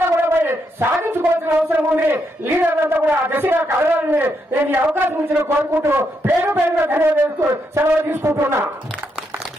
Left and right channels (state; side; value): normal; both; correlation 0.79